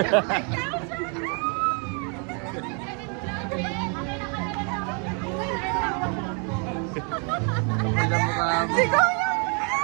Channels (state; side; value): quieter; left; 37.2 dB